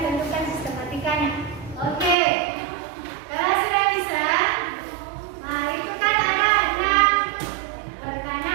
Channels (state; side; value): drops out; left; at 2.1 s